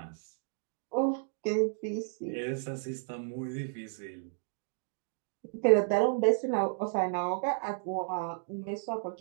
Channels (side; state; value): left; silent; digital silence